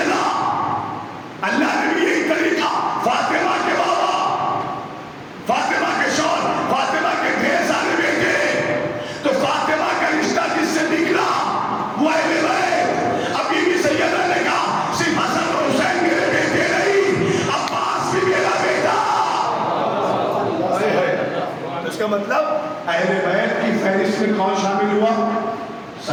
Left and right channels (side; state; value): both; identical; correlation 1.00